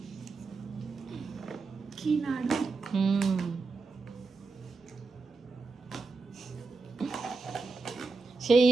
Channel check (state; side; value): quieter; left; 4.0 dB